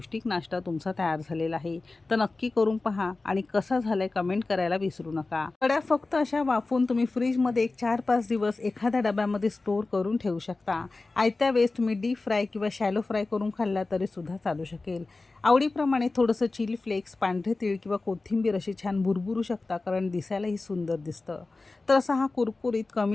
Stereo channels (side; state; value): right; quieter; 3.5 dB